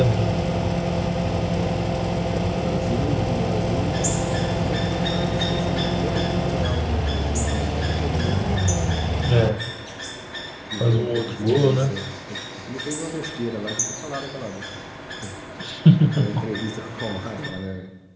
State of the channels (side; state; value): both; identical; correlation 1.00